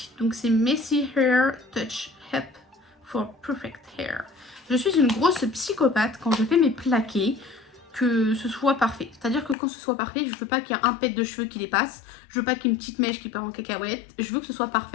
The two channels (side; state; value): right; drops out; at 9.6 s